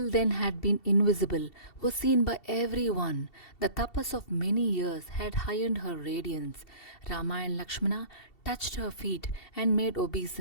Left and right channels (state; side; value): late; right; 2.7 ms